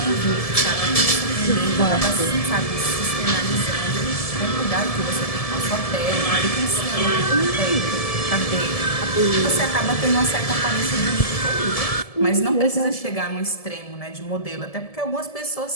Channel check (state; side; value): late; right; 1.7 ms